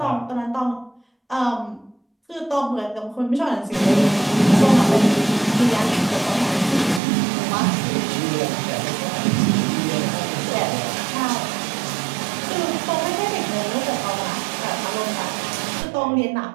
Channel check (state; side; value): drops out; left; at 7.0 s